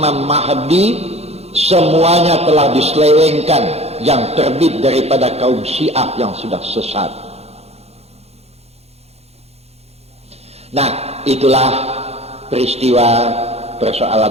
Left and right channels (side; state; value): left; late; 0.30 ms